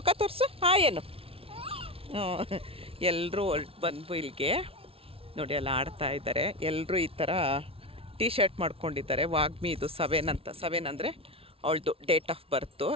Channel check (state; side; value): late; left; 0.27 ms